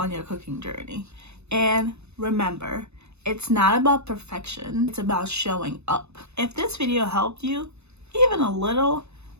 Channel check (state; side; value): late; left; 0.81 ms